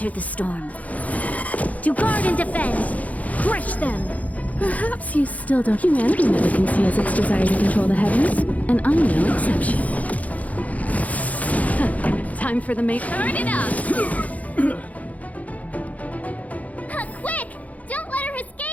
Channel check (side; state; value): right; late; 0.072 ms